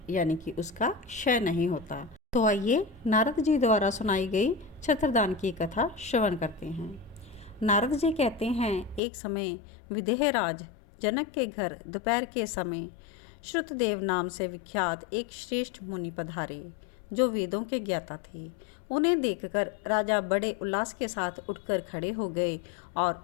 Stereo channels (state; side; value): drops out; right; at 9.0 s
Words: यानी कि उसका क्षय नहीं होता। तो आइए नारद जी द्वारा सुनाई गई छत्रदान की कथा श्रवण करते हैं। नारद जी कहते हैं, एक समय विदेहराज जनक के घर दोपहर के समय श्रुतदेव नाम से विख्यात एक श्रेष्ठ मुनि पधारे, जो वेदों के ज्ञाता थे। उन्हें देखकर राजा बड़े उल्लास के साथ उठकर खड़े हो गए